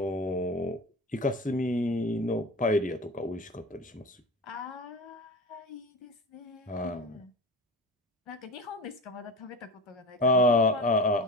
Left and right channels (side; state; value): both; normal; correlation 0.30